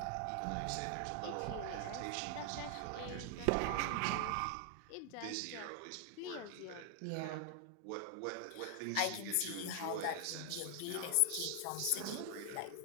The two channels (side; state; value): both; different; correlation 0.00